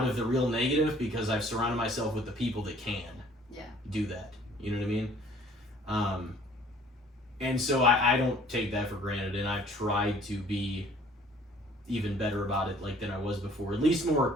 of the real negative, because I've surrounded myself with the people that can do that. You know what I mean? And so I don't take that for granted, and I've tried to be even better about it like than I was before, at least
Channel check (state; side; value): normal; both; correlation 0.55